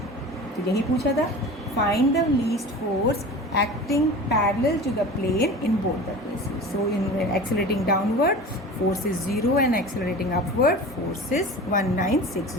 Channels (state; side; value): normal; both; correlation 0.35